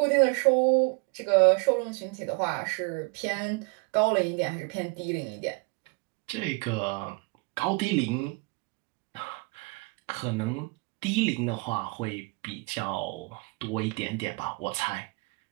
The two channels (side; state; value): left; quieter; 29.2 dB